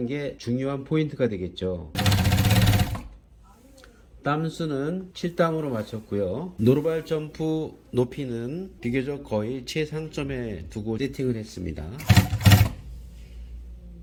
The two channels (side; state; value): both; identical; correlation 1.00